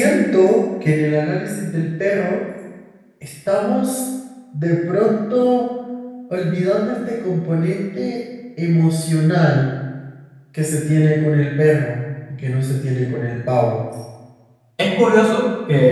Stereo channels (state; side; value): identical; both; correlation 1.00